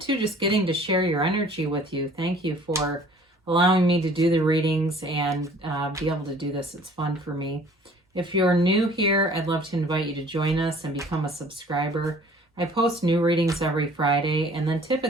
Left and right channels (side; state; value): both; normal; correlation 0.52